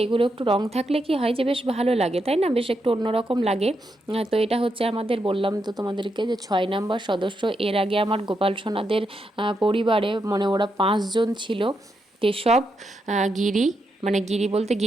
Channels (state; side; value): normal; both; correlation 0.82